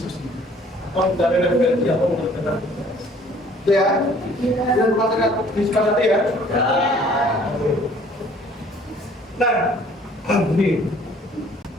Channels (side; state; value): both; normal; correlation 0.56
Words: atau dari referensi atau mengerjakan itu ya. Dan masyarakat disepakati ya. Nah, ini